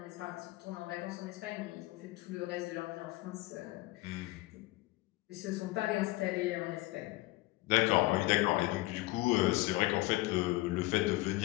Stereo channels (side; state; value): right; quieter; 19.8 dB